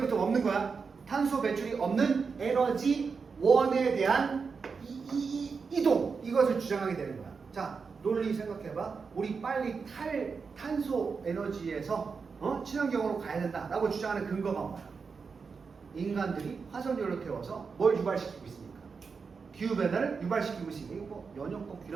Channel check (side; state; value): left; quieter; 5.2 dB